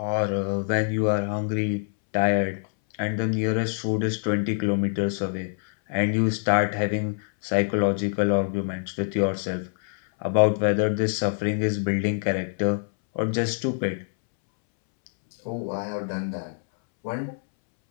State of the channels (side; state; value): right; silent; 62 dB below the other